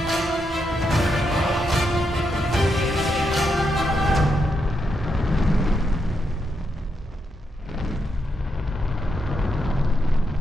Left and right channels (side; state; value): both; normal; correlation 0.82